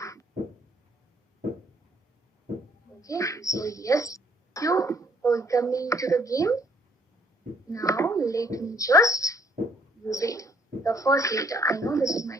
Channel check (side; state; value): both; normal; correlation 0.64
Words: Okay, so yes, you welcome to the game. Now let me just use it. The first letter, I know this is